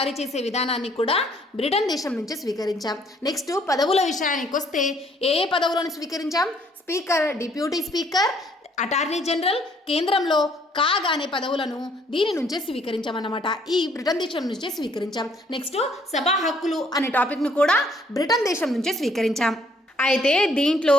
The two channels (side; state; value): both; normal; correlation 0.64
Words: చేసే విధానాన్ని కూడా బ్రిటన్ దేశం నుంచి స్వీకరించాం. నెక్స్ట్ పదవుల విషయానికి వస్తే ఏ పదవులను స్వీకరించాం? Speaker, deputy speaker, attorney general, కేంద్రంలో కాగ్ అనే పదవులను దీని నుంచే స్వీకరించామన్నమాట. ఈ బ్రిటన్ దేశం నుంచే స్వీకరించాం. నెక్స్ట్ సభా హక్కులు అనే టాపిక్ను కూడా బ్రిటన్ దేశం నుంచే స్వీకరించాం. అయితే దీంట్లో